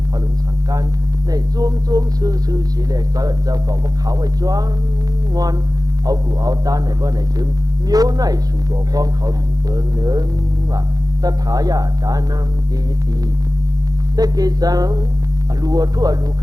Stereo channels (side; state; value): left; late; 0.18 ms